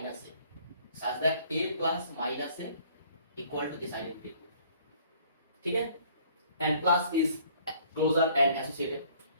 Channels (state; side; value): inverted; both; correlation -0.58